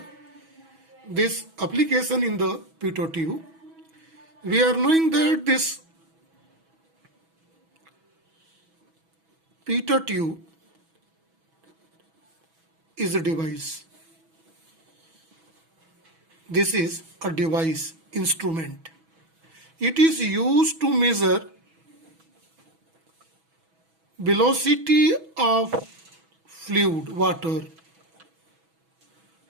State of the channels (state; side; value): late; left; 6.1 ms